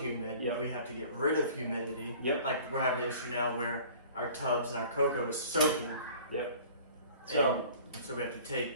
Yep. We have to get rid of humidity. Yep. Like we're having an issue now where our tubs and our cocoa is soaking. Yep. So we have to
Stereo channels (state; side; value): inverted; both; correlation -0.47